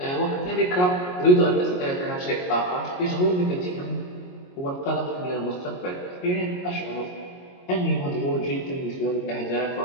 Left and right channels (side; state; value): right; late; 22 ms